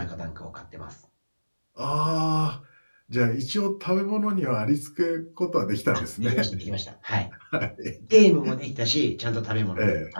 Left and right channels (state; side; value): inverted; both; correlation -1.00